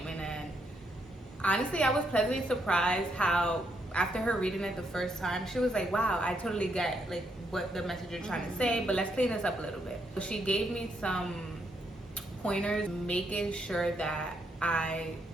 and honestly, I was pleasantly surprised how after her reading it the first time, she was like, wow, I totally get like what the message you're trying to say, but let's clean this up a little bit. So she gave me some pointers, making sure that I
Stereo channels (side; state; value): both; normal; correlation 0.77